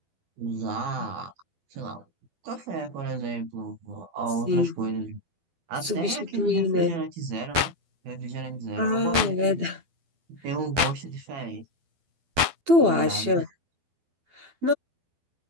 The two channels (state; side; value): late; left; 12 ms